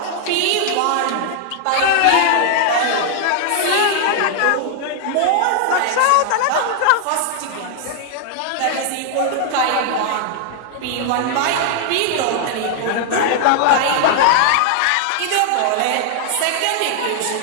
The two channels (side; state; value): both; different; correlation 0.00